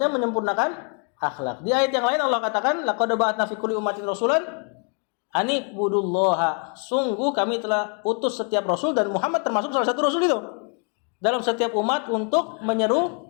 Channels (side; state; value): right; quieter; 39.3 dB